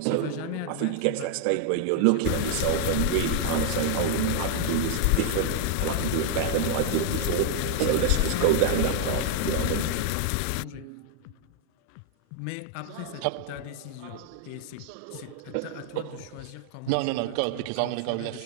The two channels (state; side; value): different; both; correlation 0.00